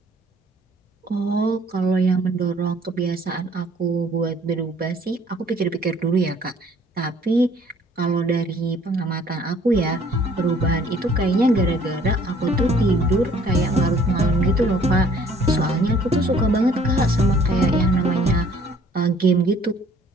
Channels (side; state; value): both; normal; correlation 0.57